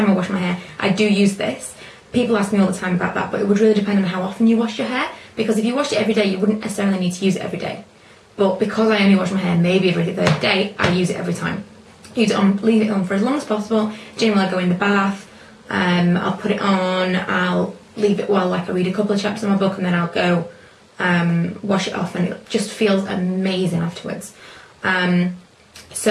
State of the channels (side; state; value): both; identical; correlation 1.00